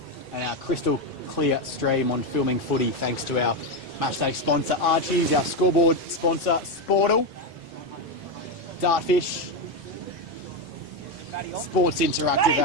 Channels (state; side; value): normal; both; correlation 0.09